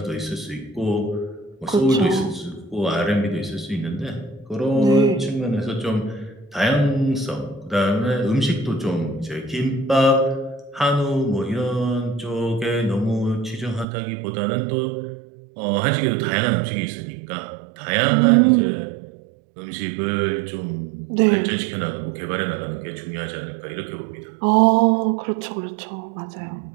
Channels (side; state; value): left; drops out; at 13.9 s